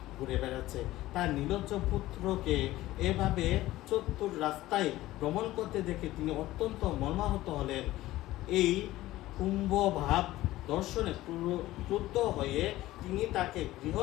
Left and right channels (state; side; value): quieter; right; 16.3 dB